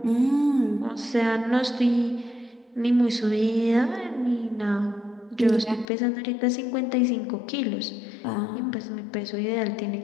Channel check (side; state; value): right; drops out; at 5.9 s